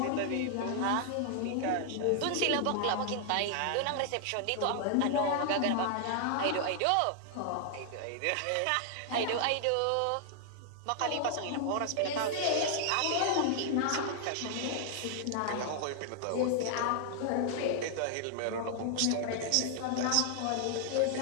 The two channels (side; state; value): both; different; correlation 0.00